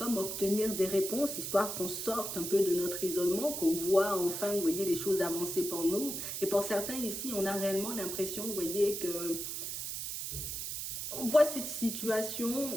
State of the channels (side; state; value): right; noise; hiss, 4 dB below the sound